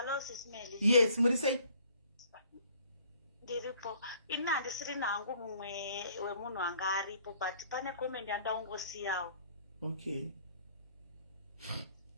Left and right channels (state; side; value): inverted; both; correlation -0.58